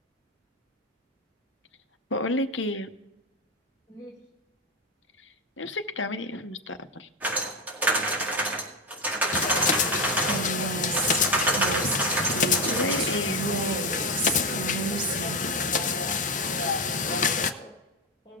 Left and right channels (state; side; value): normal; both; correlation 0.12